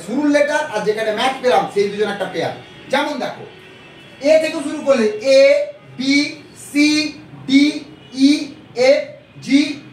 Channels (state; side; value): identical; both; correlation 1.00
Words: শুরুর লেটার আর যেখানে ম্যাচ পেলাম সেই দুজন একটা পেয়ার। যেমন দেখো এ থেকে শুরু করলে A B C D E F G